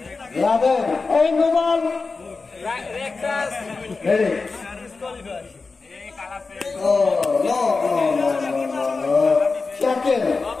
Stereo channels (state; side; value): quieter; right; 4.2 dB